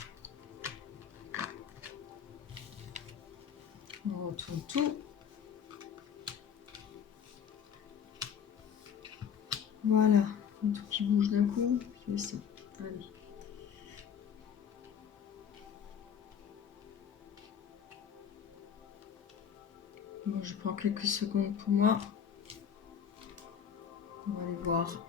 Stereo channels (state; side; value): quieter; right; 7.7 dB